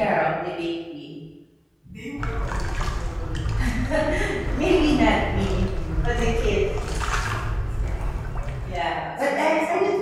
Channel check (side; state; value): both; identical; correlation 1.00